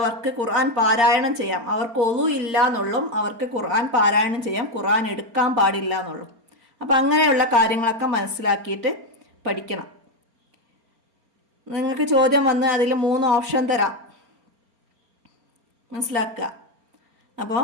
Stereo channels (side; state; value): left; late; 4.3 ms